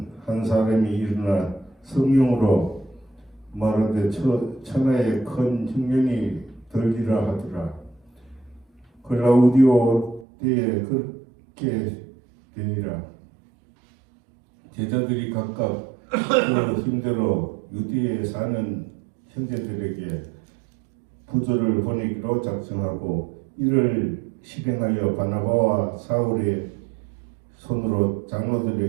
한 사람이 일어나 성령으로 말하되 천하에 큰 흉년이 들리라 하더라. 클라우디오 때에 그렇게 되니라. 제자들이 각각 그 힘대로 유대에 사는 형제들에게 부조를 보내기로 작정하고 이를 실행하여 바나바와 사울의 손으로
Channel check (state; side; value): drops out; left; at 10.2 s